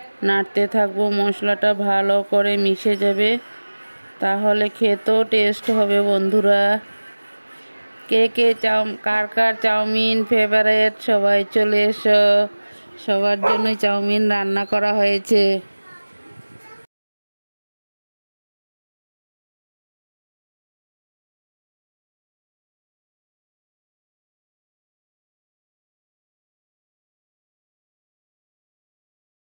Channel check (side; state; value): both; inverted; correlation -1.00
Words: নাড়তে থাকবো। মশলাটা ভালো করে মিশে যাবে, তাহলে খেতেও টেস্ট হবে। বন্ধুরা, কে কে কার কার চাউমিন ফেভারিট সবাই চলে এসো। সবার জন্যই চাউমিন রান্না করা হয়েছে।